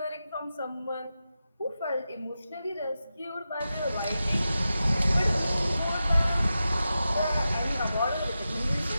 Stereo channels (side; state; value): both; inverted; correlation -0.91